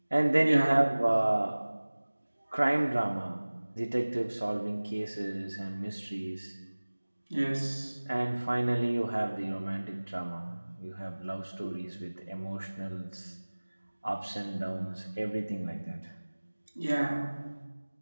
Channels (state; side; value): inverted; both; correlation -1.00